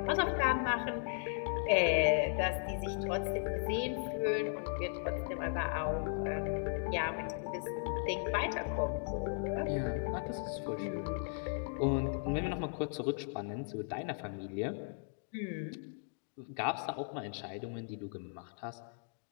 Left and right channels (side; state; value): right; silent; digital silence